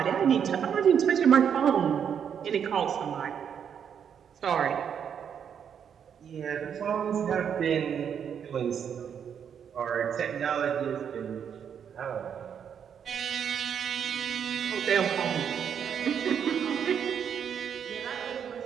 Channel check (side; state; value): left; quieter; 7.9 dB